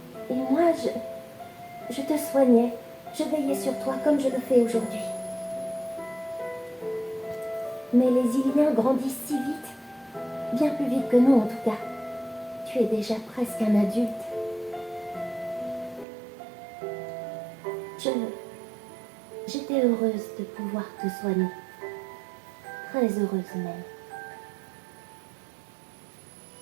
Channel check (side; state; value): left; drops out; at 16.1 s